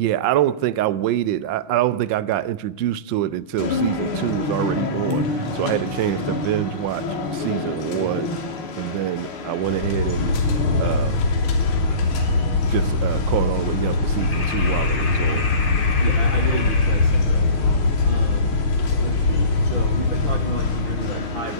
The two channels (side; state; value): right; late; 6.5 ms